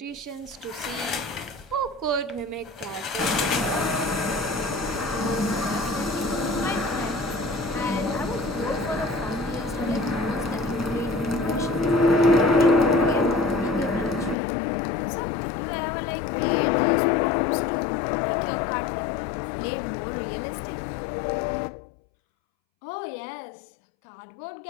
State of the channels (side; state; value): right; drops out; at 14.4 s